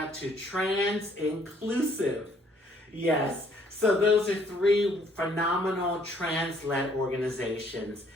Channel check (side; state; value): both; normal; correlation 0.64